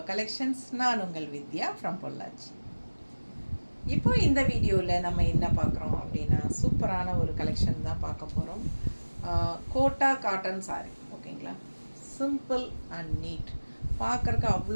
Collections. நான் உங்கள் வித்யா ஃப்ரம் பொள்ளாச்சி. இப்போ இந்த வீடியோவில் நம்ம என்ன பார்க்குறோம் அப்படின்னா சூப்பரான ஒரு கலெக்ஷன் தான் பார்க்க போகிறோம். கோட்டா காட்டன் சாரி, ஓகேங்களா? சிம்பிள் அண்ட் நீட், பார்க்குறக்கு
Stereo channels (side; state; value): both; inverted; correlation -1.00